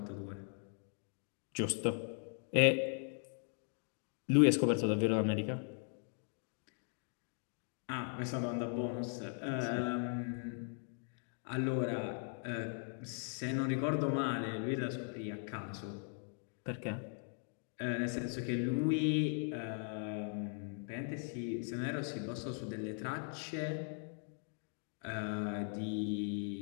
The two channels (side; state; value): right; silent; 52 dB below the other